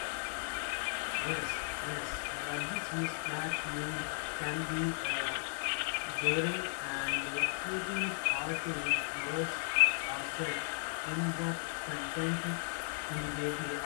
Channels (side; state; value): right; silent; digital silence